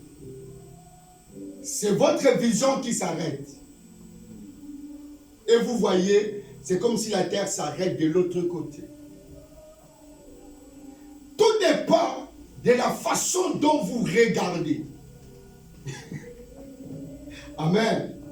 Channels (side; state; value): both; identical; correlation 1.00